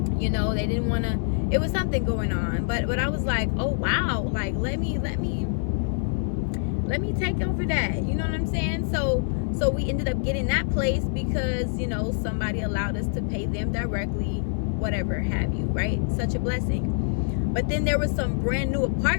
They didn't want to, it was something going on. But I was like, oh, wow, like, let me take over that. You know what I'm saying? So So we ended up getting that place because, you know, somebody allowed us to pay them directly, whatever have you, right? Such a blessing. But then there was some brand new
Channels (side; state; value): right; silent; 61 dB below the other